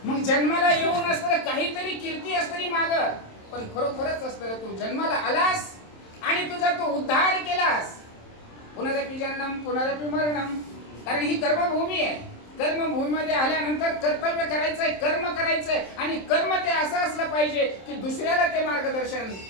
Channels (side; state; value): right; late; 27 ms